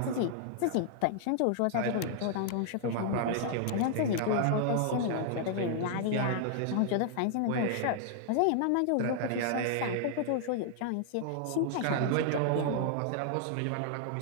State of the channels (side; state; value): both; different; correlation -0.01